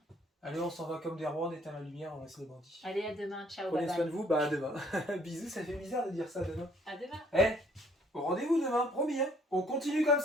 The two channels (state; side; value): normal; both; correlation 0.62